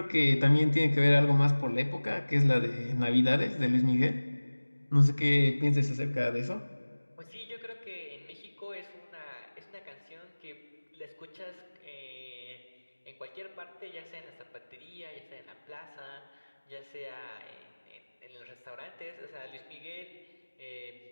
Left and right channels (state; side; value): inverted; both; correlation -1.00